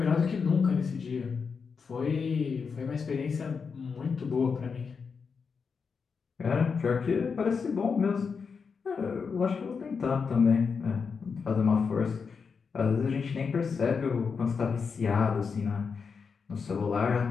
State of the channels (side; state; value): right; quieter; 5.6 dB